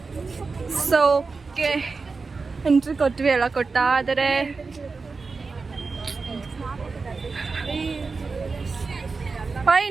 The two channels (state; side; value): quieter; left; 4.3 dB